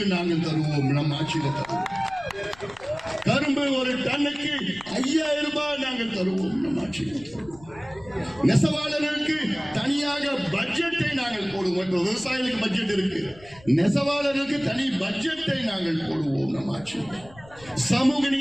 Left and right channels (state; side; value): noise; left; rumble, 23 dB below the sound